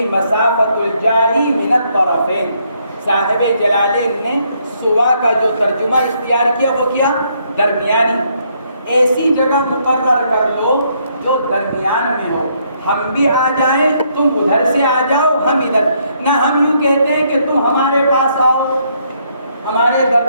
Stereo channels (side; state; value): both; inverted; correlation -0.71